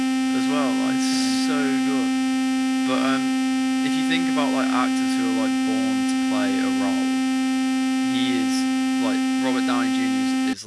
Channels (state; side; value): identical; both; correlation 1.00